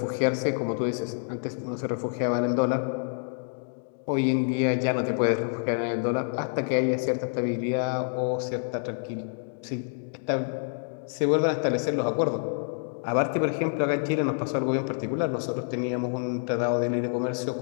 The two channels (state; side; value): silent; right; digital silence